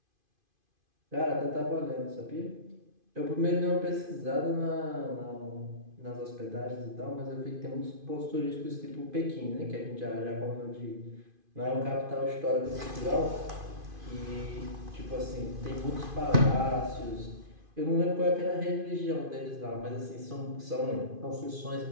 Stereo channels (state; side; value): late; left; 2.5 ms